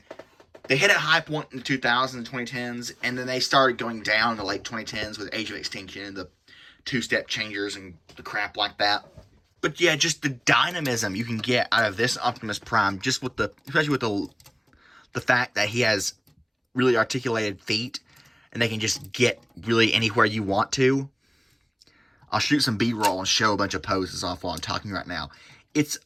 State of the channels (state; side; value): identical; both; correlation 1.00